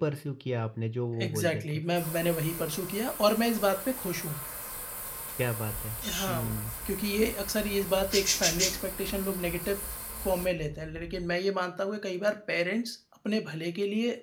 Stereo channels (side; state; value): both; identical; correlation 1.00